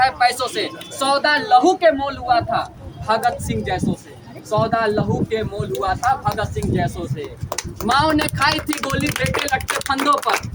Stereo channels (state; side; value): identical; both; correlation 1.00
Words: पैसों से। सौदा लहू के मोल हुआ था भगत सिंह जैसों से, सौदा लहू के मोल हुआ था भगत सिंह जैसों से। माओ ने खाई थी गोली बेटे लटके फंदों पर,